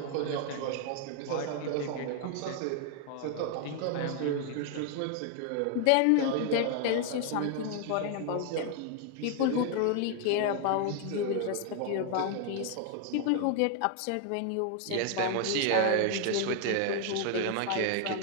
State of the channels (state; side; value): different; both; correlation 0.00